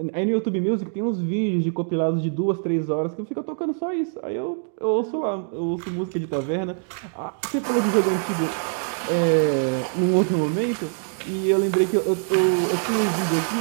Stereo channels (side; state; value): left; silent; 63 dB below the other